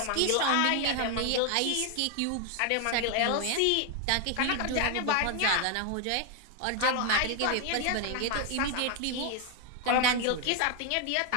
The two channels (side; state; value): both; different; correlation 0.01